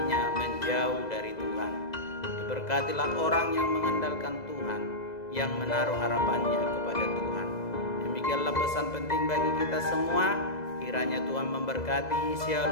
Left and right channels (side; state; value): right; late; 2.0 ms